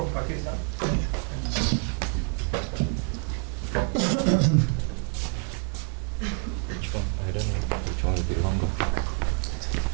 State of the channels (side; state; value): left; quieter; 39.4 dB